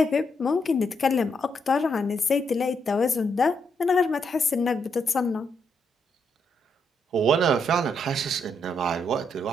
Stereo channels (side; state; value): both; normal; correlation 0.77